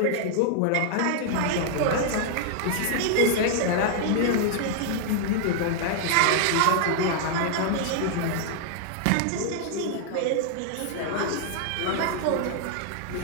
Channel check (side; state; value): both; different; correlation 0.00